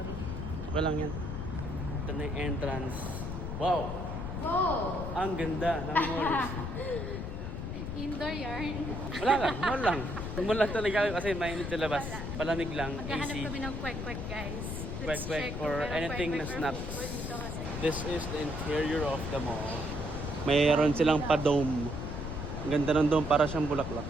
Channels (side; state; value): left; noise; rumble, 5 dB below the sound